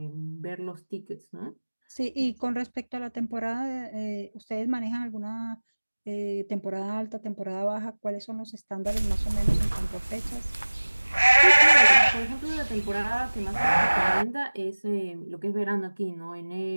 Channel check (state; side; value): inverted; both; correlation -1.00